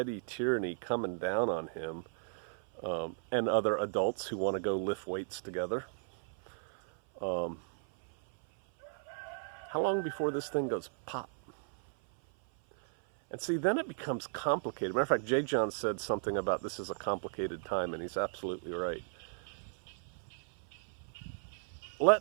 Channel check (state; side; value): silent; left; 54 dB below the other